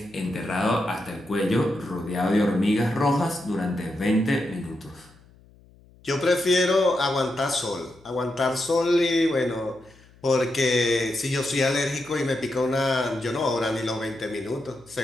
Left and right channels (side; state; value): left; noise; hum, 27 dB below the sound